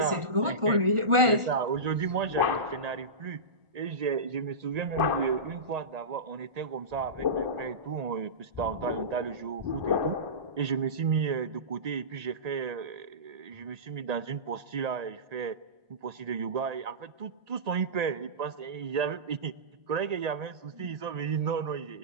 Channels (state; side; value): late; left; 1.4 ms